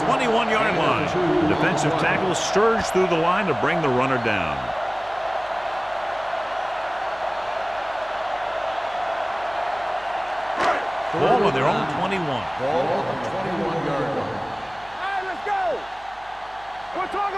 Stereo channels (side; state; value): right; noise; hum, 25 dB below the sound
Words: 21-yard line. The defensive tackle surged through the line to bring the runner down. Ball on their own 21. Ball on the 21-yard line. All right, let's go. We're talking